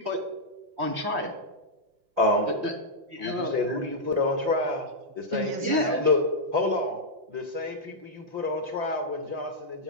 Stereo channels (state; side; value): late; left; 5.8 ms